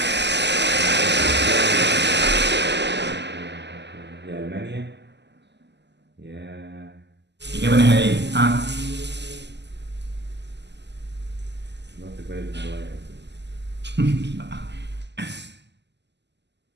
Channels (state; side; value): late; left; 0.50 ms